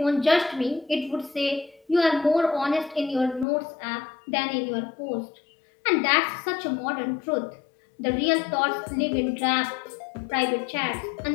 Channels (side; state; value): right; drops out; at 3.5 s